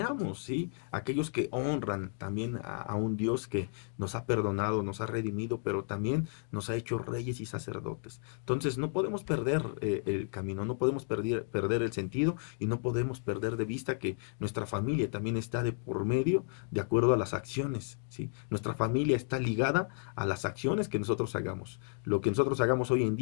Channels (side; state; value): right; silent; 56 dB below the other